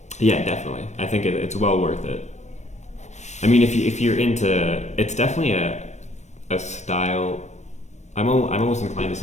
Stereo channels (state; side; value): late; right; 0.34 ms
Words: Yeah, definitely. I think it's well worth it. I mean, if you're into, it's definitely a style. I'm almost inclined to